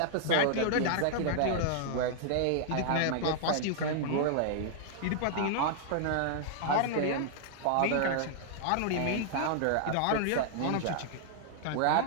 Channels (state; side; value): different; both; correlation -0.01